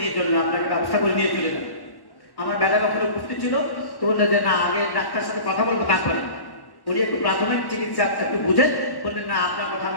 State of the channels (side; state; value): right; late; 1.1 ms